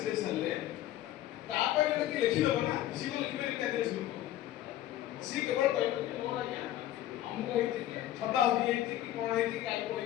सरले तापर कि लिखि दबो ना सी को लिखि पारि क्या देश लोग सी केवल कहबो कि मोर आज्ञा हमको हेति कि छता होई हेति कि कोन हेति काई को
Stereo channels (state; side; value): quieter; right; 13.3 dB